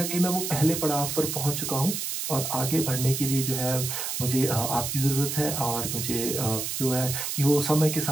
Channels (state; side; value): noise; right; hiss, 3 dB below the sound